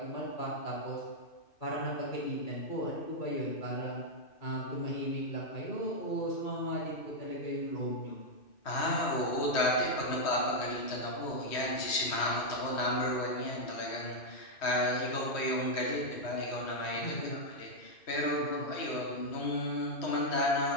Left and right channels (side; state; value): right; late; 2.5 ms